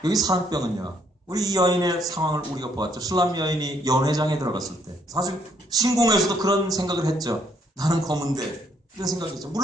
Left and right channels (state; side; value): normal; both; correlation 0.69